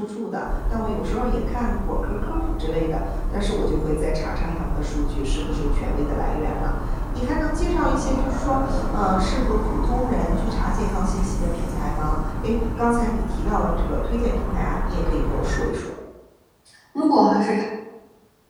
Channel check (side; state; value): both; identical; correlation 1.00